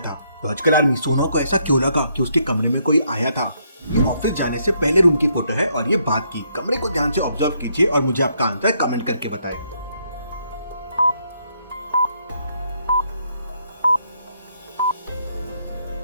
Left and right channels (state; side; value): inverted; both; correlation -0.73